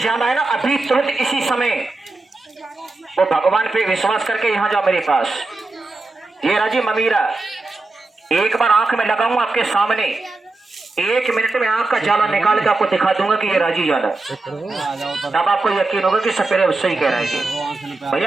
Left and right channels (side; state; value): left; quieter; 3.2 dB